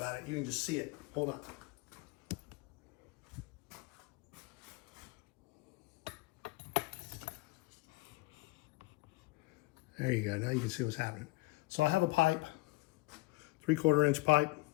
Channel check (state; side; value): quieter; right; 21.8 dB